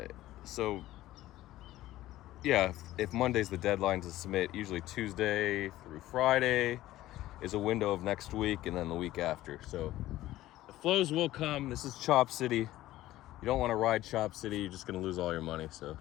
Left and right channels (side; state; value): right; quieter; 15.3 dB